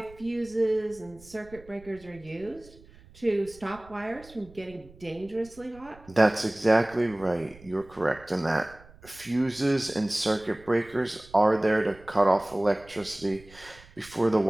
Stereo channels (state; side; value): noise; right; rumble, 23 dB below the sound